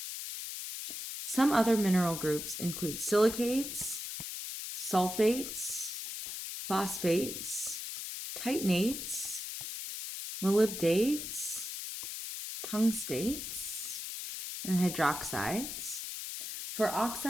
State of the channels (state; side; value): noise; left; hiss, 6 dB below the sound